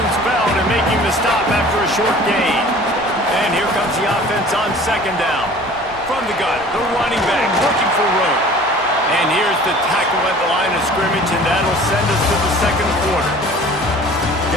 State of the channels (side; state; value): both; normal; correlation 0.46